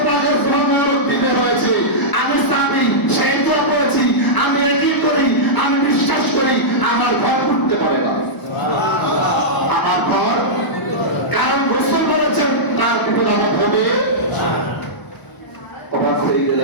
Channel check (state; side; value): late; right; 1.0 ms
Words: পাকের সুন্নাহর দিতে হয়েছে। আমি সাহাবী সেই দোয়া পড়েছি, আমি একই করি, আমি বিশ্বাস করি আমার ঘর পড়তে পারে না। সুবহানাল্লাহ। আমার ঘর, কারণ রাসূল বলেছেন তার বিপদ আমার হবে না। অবাক হয়ে